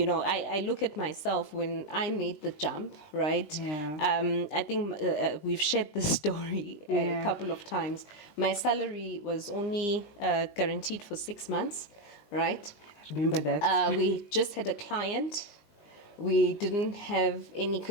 know, I look at myself when I made the jump, right? Yeah. I think we've shared this story a couple of times. My salary was only guaranteed for 6 months, right? I remember that. We just had a client. We didn't have any,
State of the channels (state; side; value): late; right; 20 ms